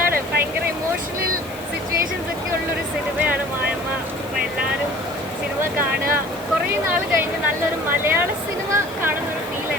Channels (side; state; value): left; noise; hiss, 20 dB below the sound